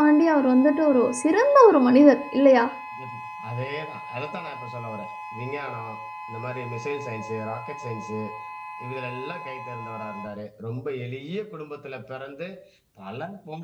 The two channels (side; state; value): both; identical; correlation 1.00